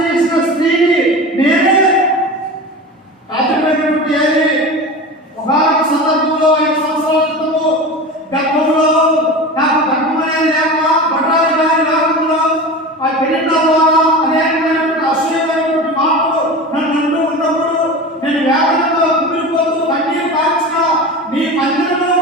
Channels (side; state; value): both; normal; correlation 0.30